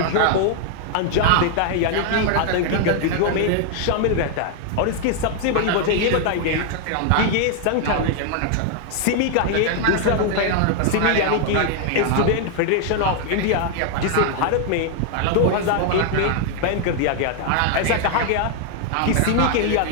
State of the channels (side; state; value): both; different; correlation 0.00